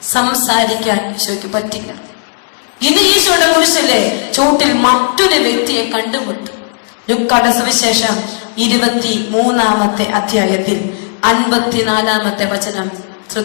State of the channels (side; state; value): right; silent; digital silence